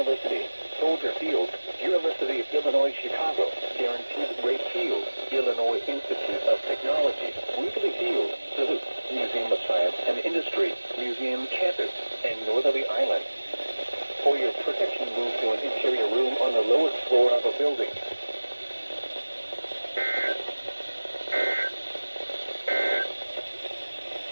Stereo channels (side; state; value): both; inverted; correlation -1.00